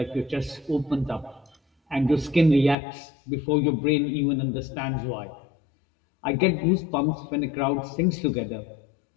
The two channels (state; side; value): drops out; right; at 2.8 s